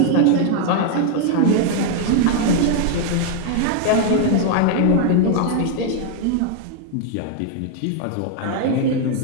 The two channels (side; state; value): both; different; correlation 0.00